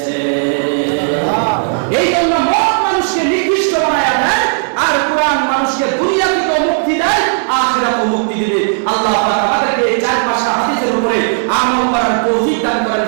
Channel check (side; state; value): left; silent; digital silence